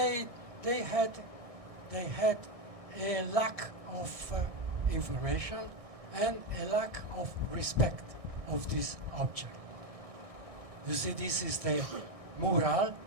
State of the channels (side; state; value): left; late; 1.6 ms